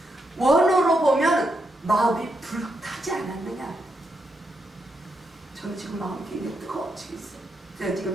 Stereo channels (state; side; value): normal; both; correlation 0.82